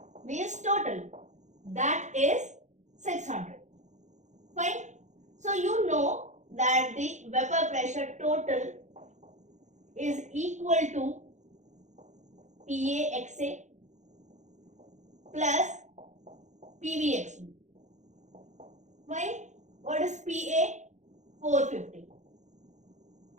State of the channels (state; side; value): late; left; 0.35 ms